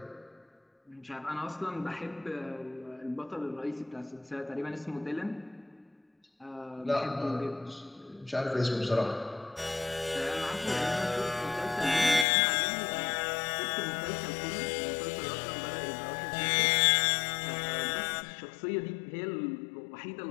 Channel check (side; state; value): right; drops out; at 12.2 s